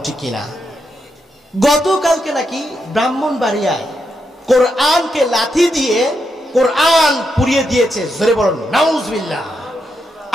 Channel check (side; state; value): both; normal; correlation 0.83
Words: ঠিক কিনা? গতকালকে নাকি ব্রাহ্মণবাড়িয়ায় কোরআনকে লাথি দিয়ে কোরআন পুড়িয়ে দিয়েছে। জোরে বলুন নাউজুবিল্লাহ।